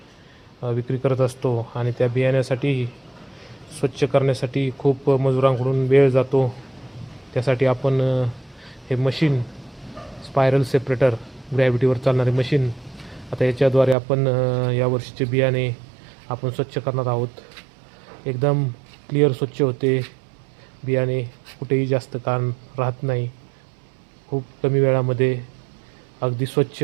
विक्री करत असतो आणि त्या बियाण्यासाठी स्वच्छ करण्यासाठी खूप मजुरांकडून वेळ जातो. त्यासाठी आपण हे मशीन स्पायरल सेपरेटर ग्रॅव्हिटीवर चालणारे मशीन आता याच्याद्वारे आपण यावर्षीचे बियाणे आपण स्वच्छ करणार आहोत. एकदम क्लिअर स्वच्छ होते बियाणे, कुठेही जास्त कान राहत नाही. खूप कमी वेळामध्ये अगदी स्वच्छ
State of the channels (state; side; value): drops out; left; at 14.0 s